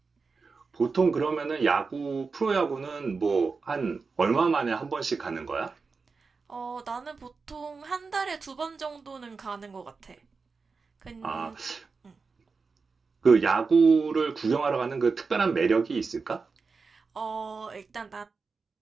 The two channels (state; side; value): quieter; left; 4.6 dB